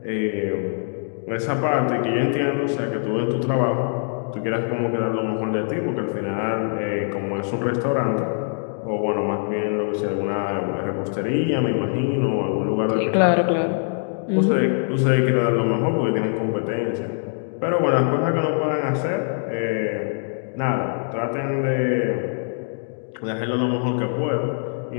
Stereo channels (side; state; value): right; silent; digital silence